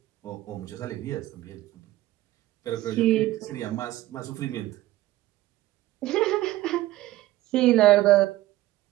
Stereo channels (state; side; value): quieter; left; 16.0 dB